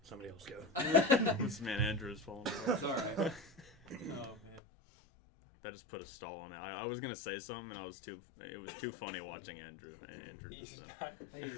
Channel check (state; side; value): drops out; right; at 4.6 s